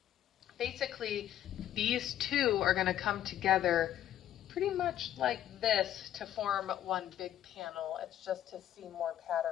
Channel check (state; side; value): quieter; right; 11.6 dB